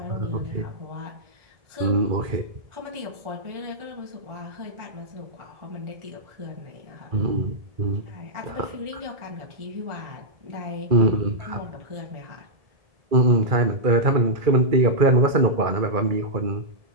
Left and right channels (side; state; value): left; late; 1.7 ms